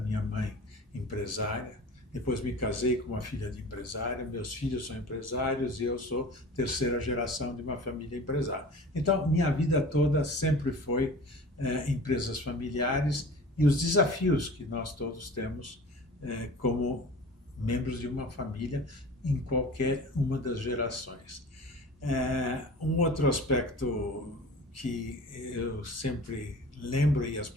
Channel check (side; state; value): both; normal; correlation 0.40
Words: mãe empresária, depois me casei com uma filha de empresário, meus filhos são empresários e eu sou terceira geração de uma família empresária. Então, minha vida toda sempre foi empresas familiares e os desafios que nós todos temos como membros de uma família em qualquer uma das gerações. Um outro aspecto que eu sempre lembro e as